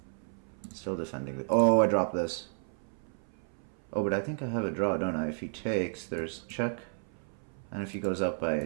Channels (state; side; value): silent; left; 56 dB below the other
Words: Still defending the... Oh, I dropped this. Oh, but I think I have a draw, don't I? If he takes, there's check. And if he goes up, I